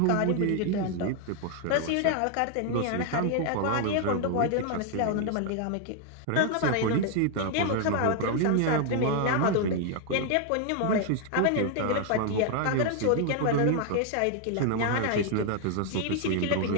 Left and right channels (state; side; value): different; both; correlation 0.00